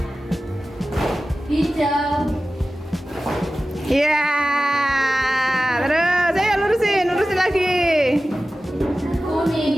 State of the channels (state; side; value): normal; both; correlation 0.95